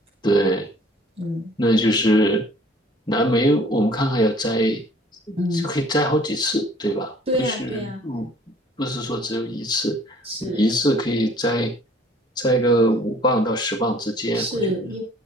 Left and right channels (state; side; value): normal; both; correlation 0.55